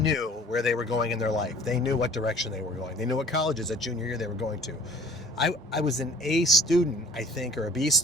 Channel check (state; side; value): normal; both; correlation 0.51